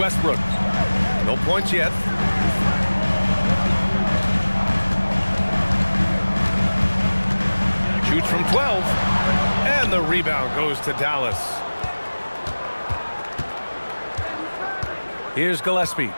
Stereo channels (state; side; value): inverted; both; correlation -1.00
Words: No points yet. Shoots from 12. And the rebound goes to Dallas. Here's Gillespie.